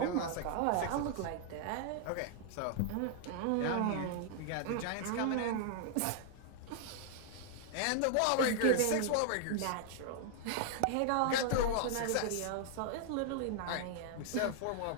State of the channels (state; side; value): different; both; correlation 0.00